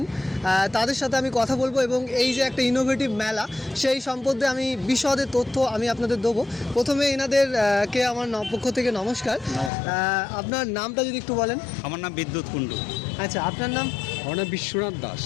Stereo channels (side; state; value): right; drops out; at 9.7 s